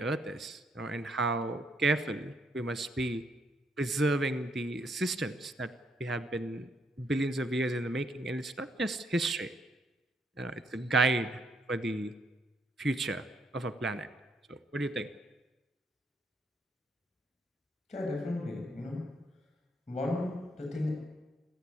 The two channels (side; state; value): both; normal; correlation 0.73